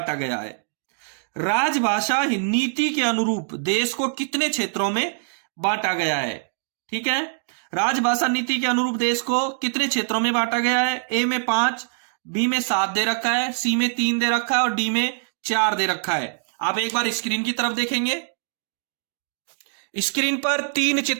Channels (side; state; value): left; silent; digital silence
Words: गया है? राजभाषा नीति के अनुरूप देश को कितने क्षेत्रों में बांटा गया है? ठीक है, राजभाषा नीति के अनुरूप देश को कितने क्षेत्रों में बांटा गया है? ए में 5, बी में 7 दे रखा है, सी में 3 दे रखा है और डी में 4 दे रखा है। आप एक बार स्क्रीन की तरफ देखेंगे, स्क्रीन पर 3